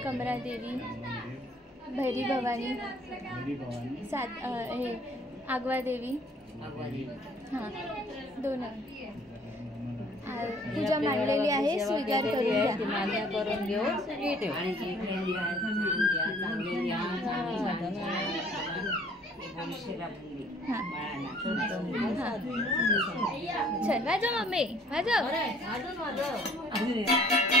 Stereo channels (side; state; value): both; normal; correlation 0.57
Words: कमरा देवी, भैरी भवानी, हे आगवा देवी. हा दोन पूजा मांडलेली आहे, स्वीकार करून घ्या. मान्य करून घेऊन सगळी ठेव. चल वाजव मम्मी वाजव.